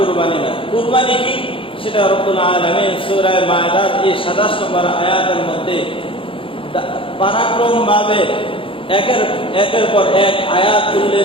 না। কুরবানি কি সেটা রব্বুল আলামিন সূরা মায়দার এই 27 নম্বর আয়াতের মধ্যে পরাক্রমভাবে একের পর এক আয়াত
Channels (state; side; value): late; right; 0.26 ms